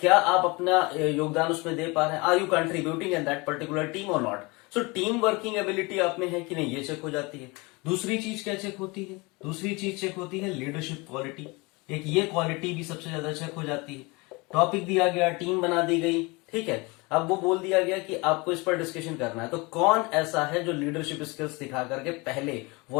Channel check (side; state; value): right; quieter; 26.0 dB